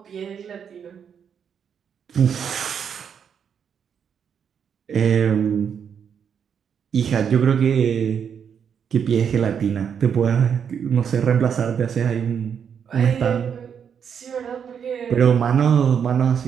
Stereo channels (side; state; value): left; quieter; 7.5 dB